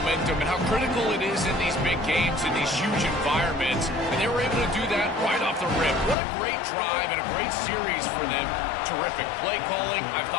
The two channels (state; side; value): drops out; right; at 6.2 s